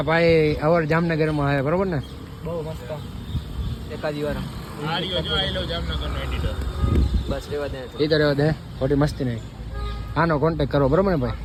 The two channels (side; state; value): both; identical; correlation 1.00